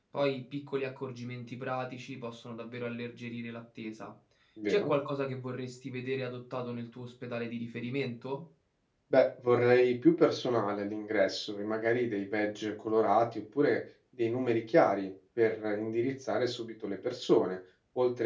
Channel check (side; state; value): both; identical; correlation 1.00